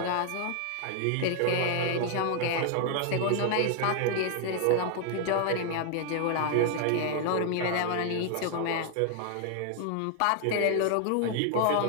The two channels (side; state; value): both; different; correlation 0.00